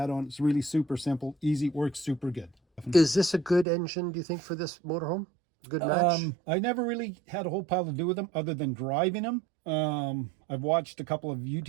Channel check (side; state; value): left; drops out; at 3.7 s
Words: It's really super simple, easy, works super good. Is this a good engine, do you think, for this motorhome? Good match? I never really had a whole pile to do with them other than driving them. I've watched a couple of